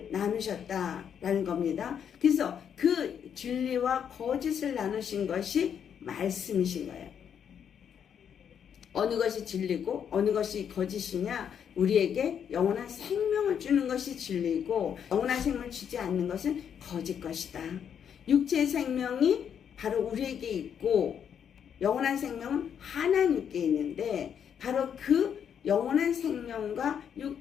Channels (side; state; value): right; quieter; 8.2 dB